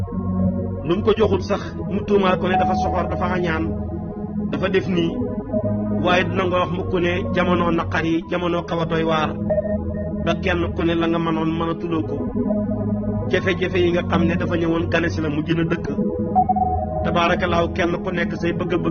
lu mu ko joxul sax mu tuumaal ko ne dafa soxor dafa añaan dafa def nii waaye dina nga wax mukk ne jamono naqar yi jamono xaw a doy waar ba kenn ku ne la nga mënoon mën a tuloo ko jafe-jafe yi nga xam ne dafa ñëwoon gane si la mu gën a dëkk tabaarakallaahu kenn ku nekk say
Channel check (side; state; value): both; identical; correlation 1.00